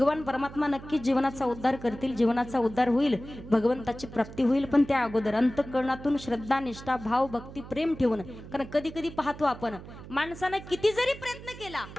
परमात्मा नक्कीच जीवनाचा उद्धार करतील, जीवनाचा उद्धार होईल, भगवंताची प्राप्ती होईल. पण त्या अगोदर अंतःकरणातून श्रद्धा, निष्ठा, भाव, भक्ती, प्रेम ठेवून. कारण कधी कधी पाहतो आपण, माणसानं किती जरी प्रयत्न केला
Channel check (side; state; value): right; noise; hum, 15 dB below the sound